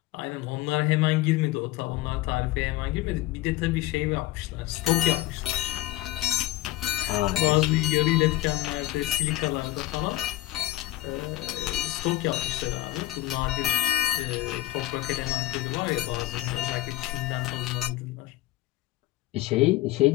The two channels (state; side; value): quieter; right; 16.8 dB